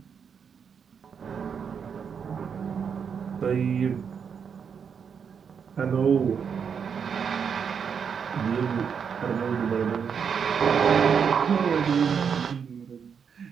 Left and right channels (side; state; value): left; quieter; 6.8 dB